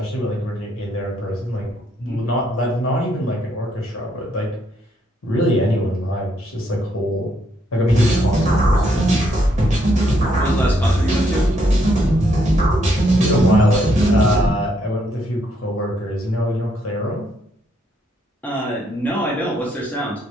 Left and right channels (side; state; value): both; normal; correlation 0.73